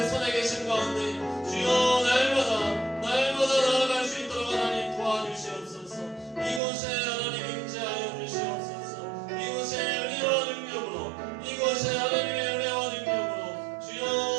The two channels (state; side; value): drops out; left; at 6.6 s